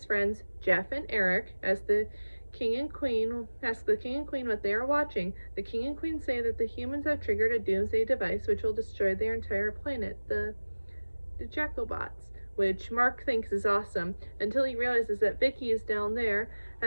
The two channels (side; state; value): both; inverted; correlation -1.00